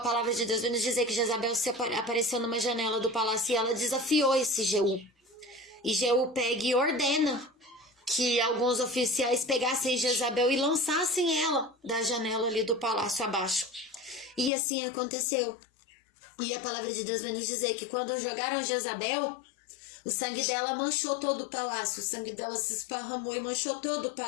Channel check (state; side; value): drops out; right; at 14.5 s